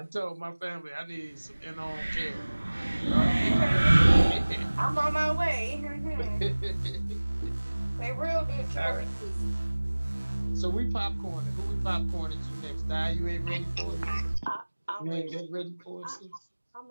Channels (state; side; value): inverted; both; correlation -1.00